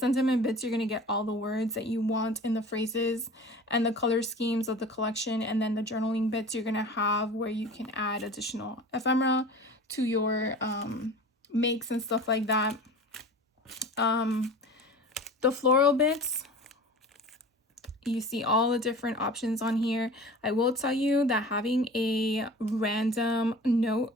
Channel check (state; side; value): normal; both; correlation 0.38